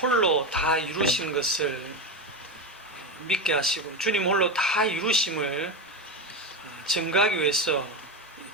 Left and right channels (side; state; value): both; normal; correlation 0.16